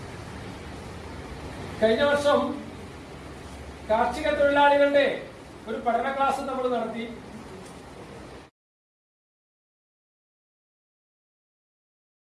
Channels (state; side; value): identical; both; correlation 1.00